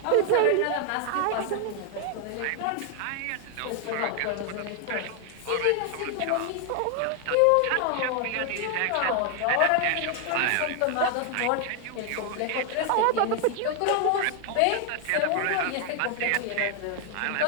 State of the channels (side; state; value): both; different; correlation 0.00